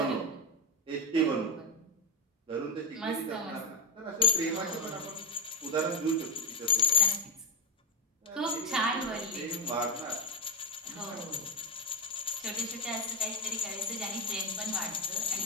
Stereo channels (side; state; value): both; normal; correlation 0.05